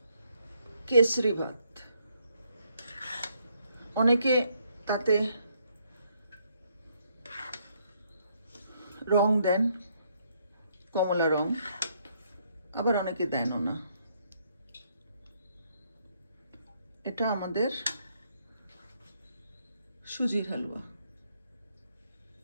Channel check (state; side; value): inverted; both; correlation -0.72